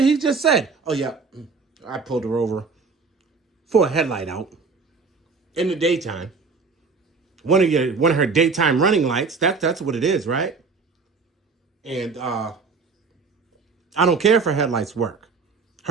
he just said, oh yeah, I pulled her over for a headlight out in the daytime. One of her daytime running lights. That's what it is, right? And I don't care if her headlights work.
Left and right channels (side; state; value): left; quieter; 4.7 dB